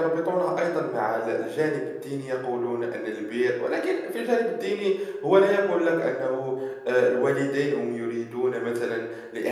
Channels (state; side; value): identical; both; correlation 1.00